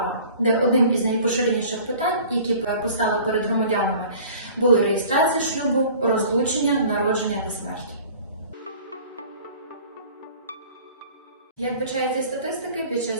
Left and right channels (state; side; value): inverted; both; correlation -0.47